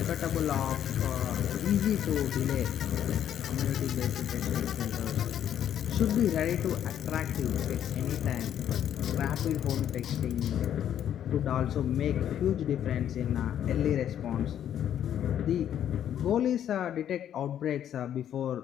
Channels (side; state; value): right; quieter; 10.2 dB